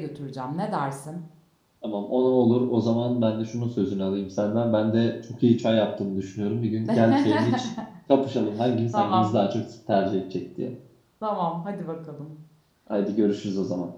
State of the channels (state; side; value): identical; both; correlation 1.00